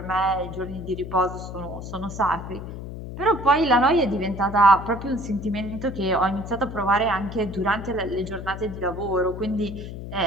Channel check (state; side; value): noise; left; hum, 9 dB below the sound